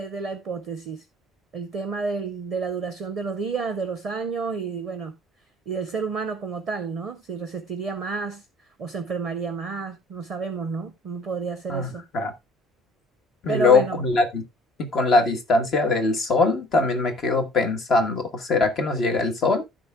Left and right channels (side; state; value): both; normal; correlation 0.51